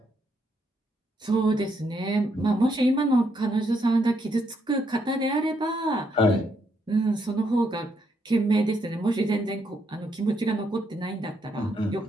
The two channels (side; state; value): both; normal; correlation 0.76